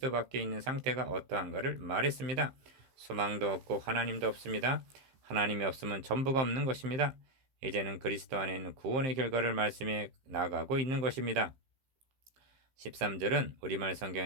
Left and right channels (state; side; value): late; left; 15 ms